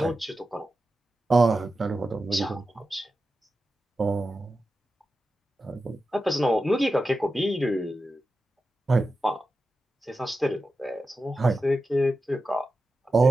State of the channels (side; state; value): both; normal; correlation 0.91